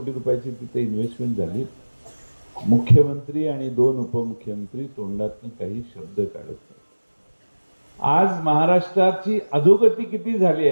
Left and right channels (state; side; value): inverted; both; correlation -1.00